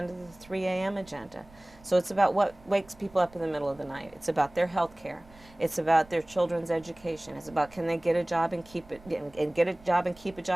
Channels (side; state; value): right; noise; rumble, 24 dB below the sound